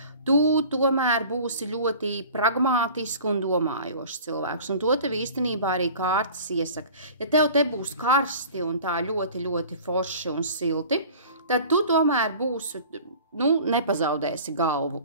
Tu tomēr būsi ļoti pragmātiski un domājošs cilvēks, un to tev īstenībā arī kārtas iesaka. Ja tev te būs karsti un tā ļoti, ļoti forši un silti, tad tu tomēr būsi, nepazaudēsi galvu,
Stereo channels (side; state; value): both; inverted; correlation -0.43